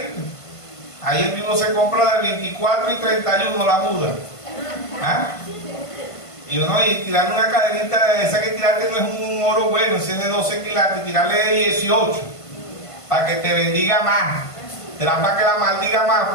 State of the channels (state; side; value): late; right; 1.5 ms